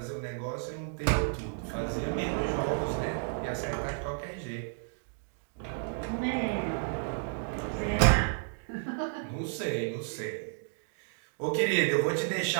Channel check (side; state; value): left; silent; digital silence